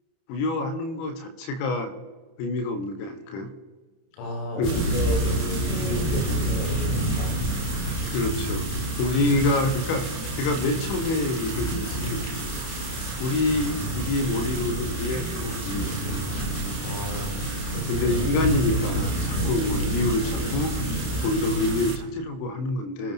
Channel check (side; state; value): right; late; 31 ms